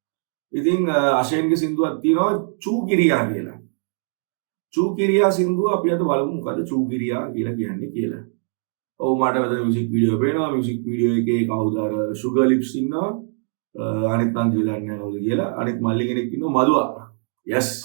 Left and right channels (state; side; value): silent; left; 62 dB below the other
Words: ඉතින් අෂේන්ගේ සින්දුවක් තියෙනවා චූ කිරියා කියලා. චූ කිරියා සින්දුව අපි අද බලමු මොකද චූ කිරියා කියලා කියන්නේ කියලා. ඔව් මට මෙතන මියුසික් වීඩියෝ පේනවා. මියුසික් වීඩියෝ එකේ කවුද අර සුගර් ලිප්ස් ඉන්නවා. අනිත් නම් කියලා දන්නේ නැහැ කියලා. අනිත් මල්ලි කෙනෙක් ඉන්නවා මදුවා. yes